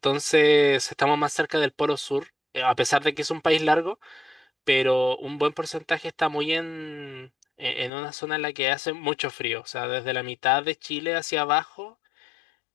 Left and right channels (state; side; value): drops out; right; at 7.9 s